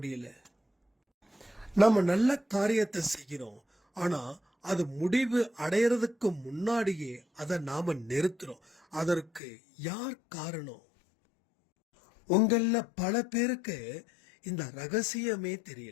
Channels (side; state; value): right; drops out; at 9.4 s